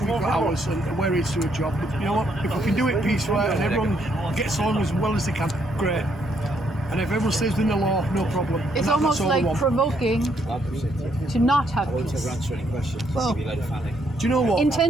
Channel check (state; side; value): normal; both; correlation 0.72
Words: we've got ours, and we're here to do a job. But you know what? If we can do it peacefully and everyone gets along as well as they can, great. And if everyone stays within the law, no problem. It's And almost that's all we like want. provoking to not have peace. Answer any questions. Well, Give you a load of family. Do you know what?